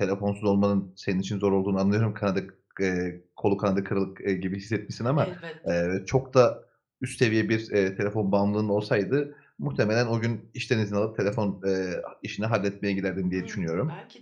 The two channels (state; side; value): identical; both; correlation 1.00